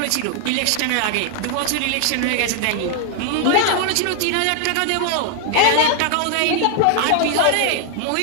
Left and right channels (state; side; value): different; both; correlation 0.00